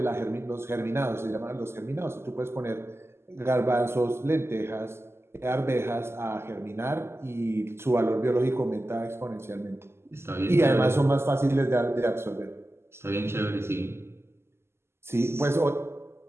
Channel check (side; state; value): left; late; 0.12 ms